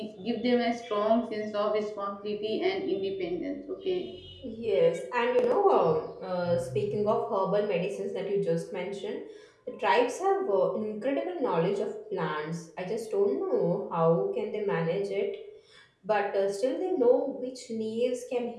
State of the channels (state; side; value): identical; both; correlation 1.00